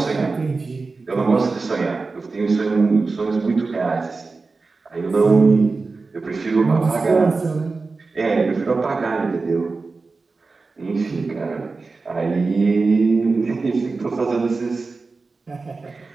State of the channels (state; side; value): quieter; left; 4.0 dB